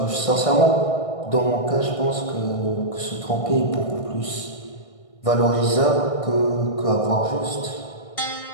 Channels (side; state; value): right; late; 1.6 ms